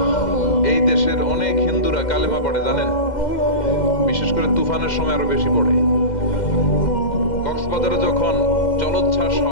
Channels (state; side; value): late; right; 2.1 ms